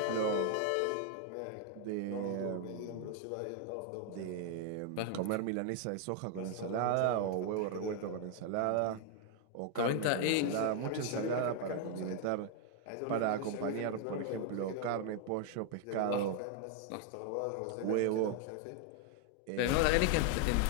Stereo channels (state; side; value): different; both; correlation 0.00